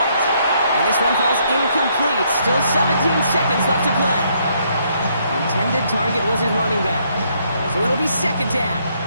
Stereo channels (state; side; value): inverted; both; correlation -0.71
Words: And this one falls incomplete. Still 17 seconds left to play. Intended target was his running back. So it'll be 2nd down.